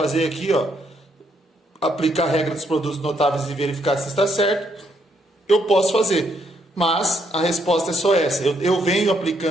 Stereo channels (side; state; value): both; normal; correlation 0.74